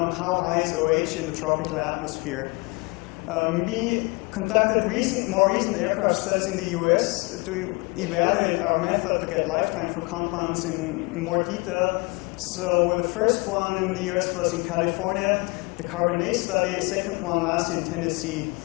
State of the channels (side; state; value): right; quieter; 27.4 dB